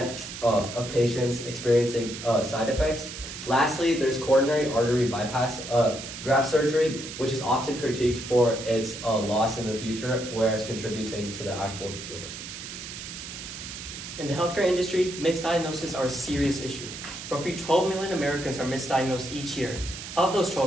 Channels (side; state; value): right; noise; hiss, 10 dB below the sound